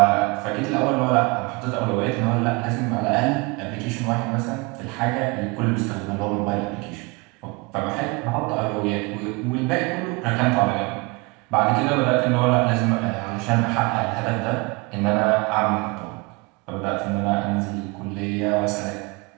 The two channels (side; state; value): left; quieter; 27.6 dB